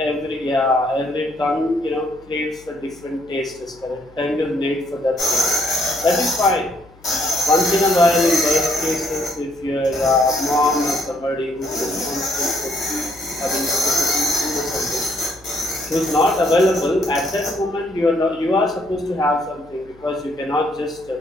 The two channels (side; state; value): left; noise; hum, 26 dB below the sound